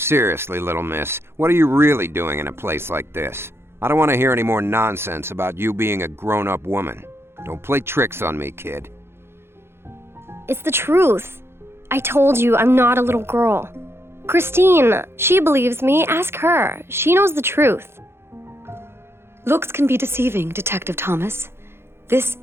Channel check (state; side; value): late; left; 0.12 ms